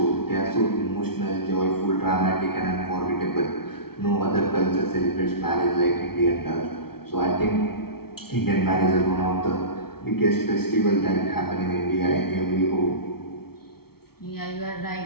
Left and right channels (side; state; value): right; late; 0.95 ms